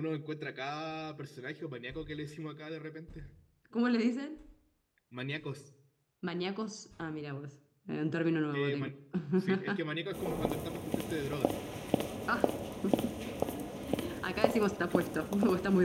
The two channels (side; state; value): both; identical; correlation 1.00